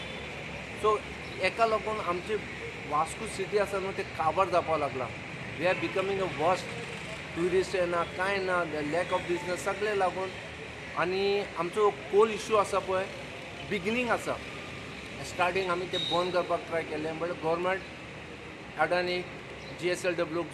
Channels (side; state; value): both; identical; correlation 1.00